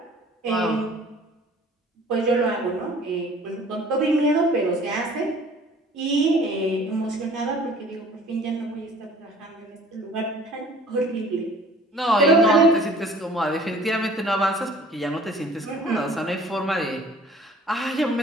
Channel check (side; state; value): both; normal; correlation 0.50